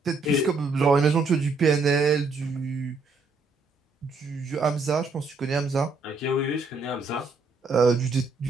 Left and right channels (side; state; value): left; quieter; 3.7 dB